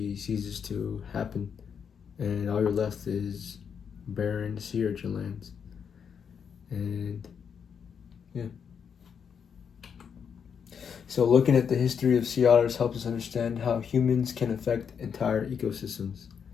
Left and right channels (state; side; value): quieter; right; 7.1 dB